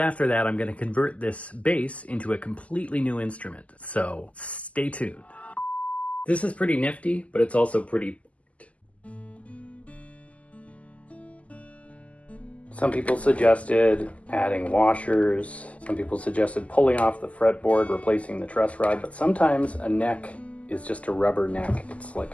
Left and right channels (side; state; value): right; late; 0.068 ms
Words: that, I'm going to convert this bass into a completely new instrument. So stay tuned. This is pretty nifty, but it's also pretty... Some people suggested adding washers. Some people suggested pulling off the fretboard, replacing the truss rod. But sometimes a neck is just a rubber neck. It's like